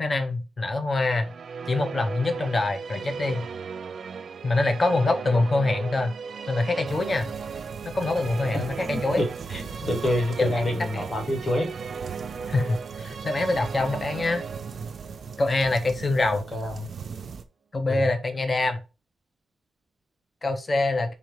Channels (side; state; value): both; normal; correlation 0.90